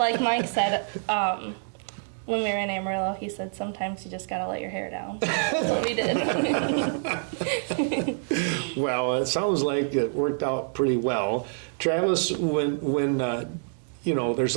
Mike said, when we were in Amarillo, he said sometimes you just gotta let your hair down. That's what we did. Well, it sounds like it worked out pretty well. Travis, when there's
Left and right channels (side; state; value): left; silent; digital silence